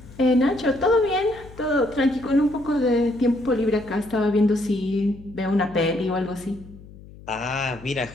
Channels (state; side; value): noise; left; hum, 19 dB below the sound